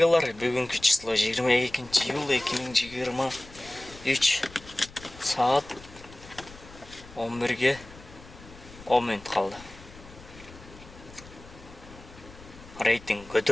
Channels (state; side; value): noise; left; rumble, 19 dB below the sound